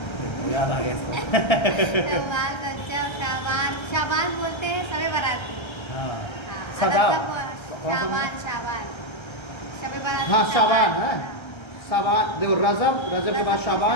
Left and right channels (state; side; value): late; right; 1.3 ms